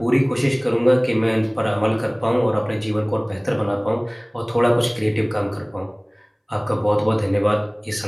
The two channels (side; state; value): both; identical; correlation 1.00